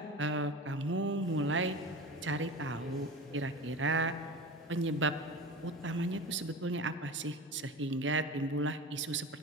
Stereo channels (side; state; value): both; normal; correlation 0.31